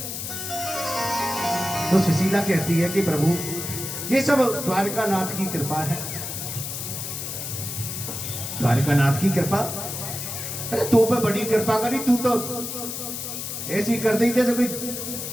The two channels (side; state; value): left; noise; hiss, 6 dB below the sound